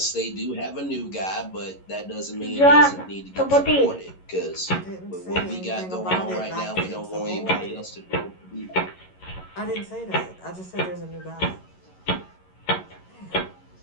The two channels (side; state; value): right; late; 11 ms